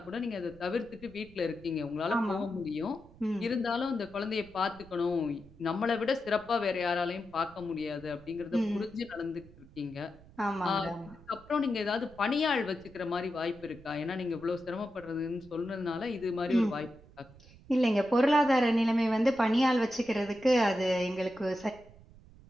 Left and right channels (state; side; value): noise; right; rumble, 22 dB below the sound